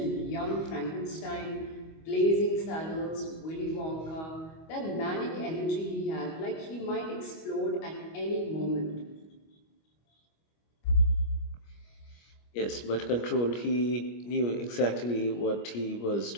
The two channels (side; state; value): right; late; 25 ms